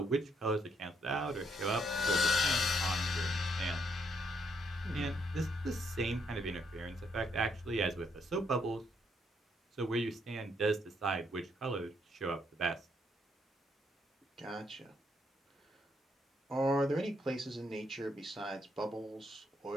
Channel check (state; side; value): normal; both; correlation 0.73